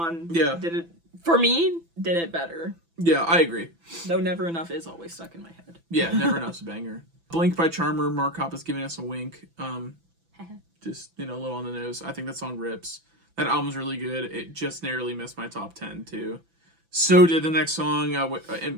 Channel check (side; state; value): left; late; 6.0 ms